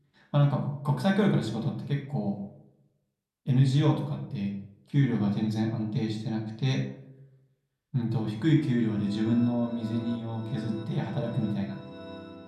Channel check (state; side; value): identical; both; correlation 1.00